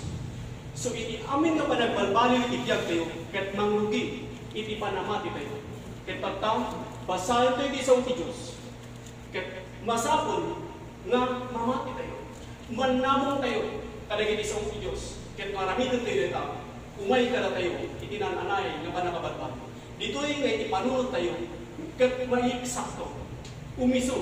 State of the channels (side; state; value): both; identical; correlation 1.00